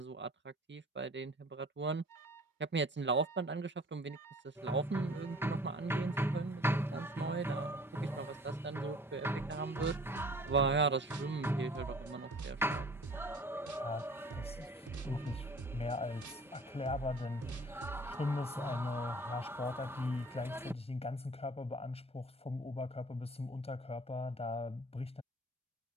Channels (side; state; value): both; normal; correlation 0.49